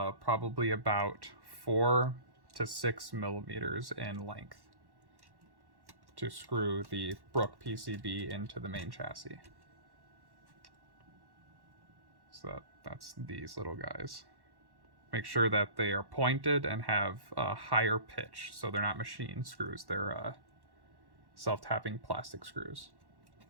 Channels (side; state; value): left; late; 1.1 ms